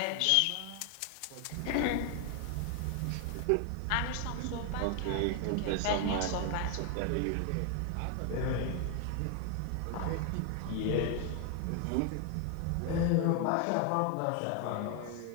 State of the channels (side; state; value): both; different; correlation 0.01